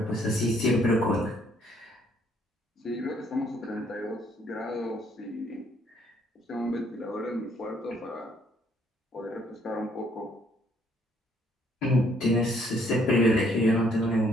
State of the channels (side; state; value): both; normal; correlation 0.66